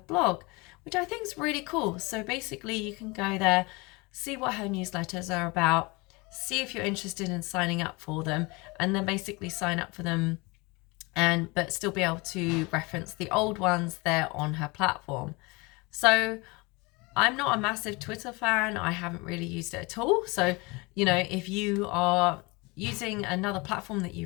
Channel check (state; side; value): quieter; right; 26.1 dB